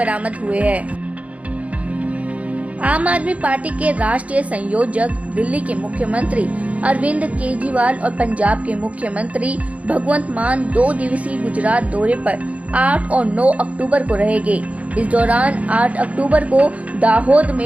हुए हैं। आम आदमी पार्टी के राष्ट्रीय संयोजक, दिल्ली के मुख्यमंत्री अरविंद केजरीवाल और पंजाब के मुख्यमंत्री भगवंत मान 2 दिवसीय गुजरात दौरे पर 8 और 9 अक्टूबर को रहेंगे। इस दौरान 8 अक्टूबर को दाहोद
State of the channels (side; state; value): left; late; 0.066 ms